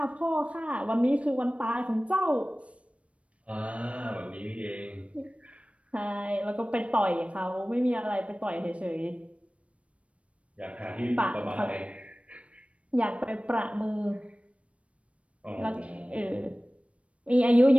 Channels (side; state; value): left; late; 0.063 ms